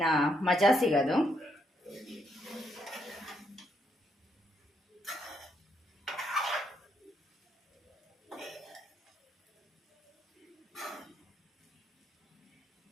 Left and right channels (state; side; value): normal; both; correlation 0.76